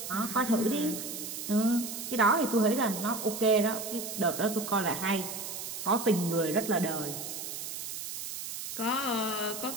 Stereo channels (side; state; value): right; noise; hiss, 7 dB below the sound